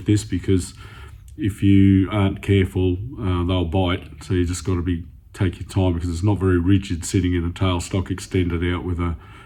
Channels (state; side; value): identical; both; correlation 1.00